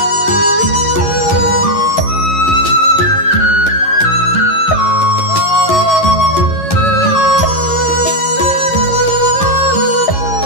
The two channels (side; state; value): right; late; 11 ms